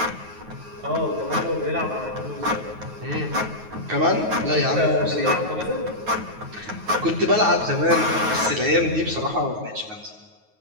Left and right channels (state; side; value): late; left; 9.3 ms